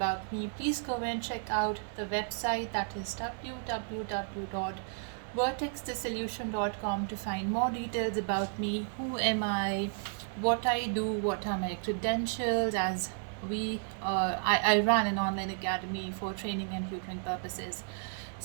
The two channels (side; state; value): left; silent; 56 dB below the other